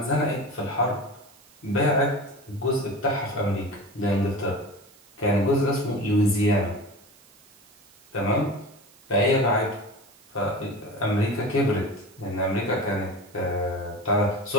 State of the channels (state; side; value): noise; right; hiss, 27 dB below the sound